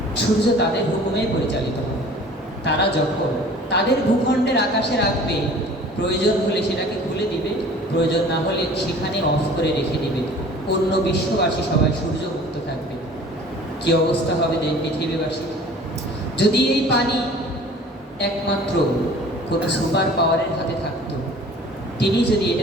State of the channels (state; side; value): normal; both; correlation 0.47